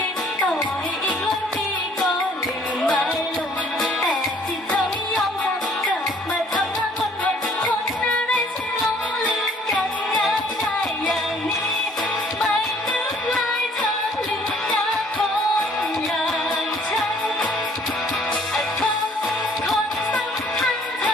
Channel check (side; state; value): both; normal; correlation 0.58